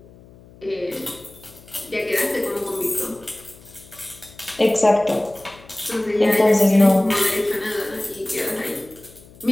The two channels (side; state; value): left; noise; hum, 23 dB below the sound